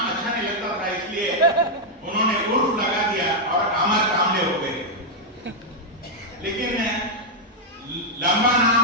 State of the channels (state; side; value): normal; both; correlation -0.03